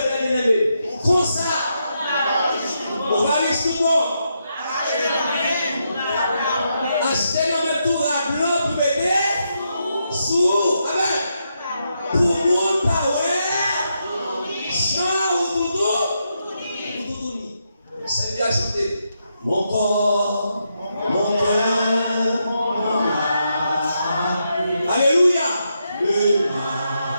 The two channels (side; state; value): both; inverted; correlation -0.82